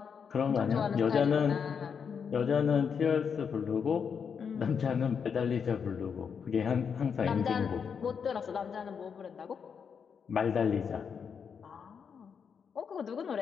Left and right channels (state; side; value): quieter; right; 6.7 dB